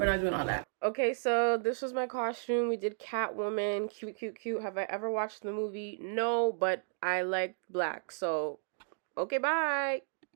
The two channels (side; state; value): left; silent; digital silence